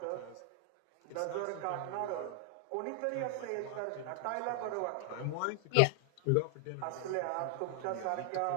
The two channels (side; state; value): both; different; correlation 0.00